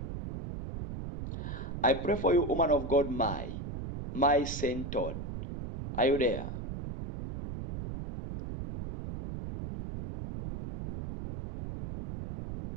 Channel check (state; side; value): noise; right; rumble, 7 dB below the sound